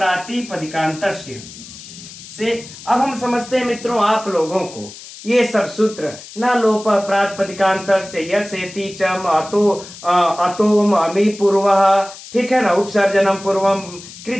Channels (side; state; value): left; noise; hiss, 16 dB below the sound